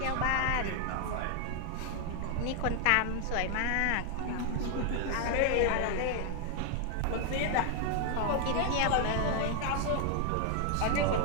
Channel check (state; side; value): different; both; correlation 0.00